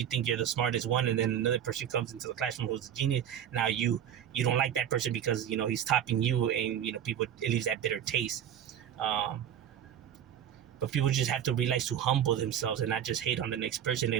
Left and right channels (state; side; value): quieter; left; 9.7 dB